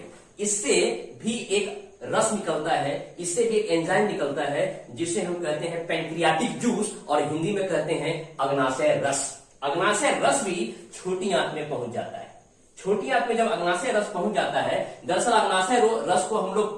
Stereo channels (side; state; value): both; identical; correlation 1.00